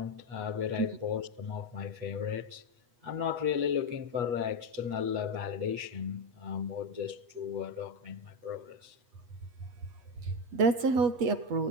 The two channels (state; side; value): late; left; 8.2 ms